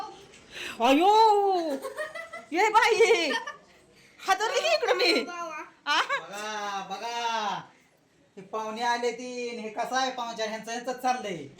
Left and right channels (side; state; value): both; identical; correlation 1.00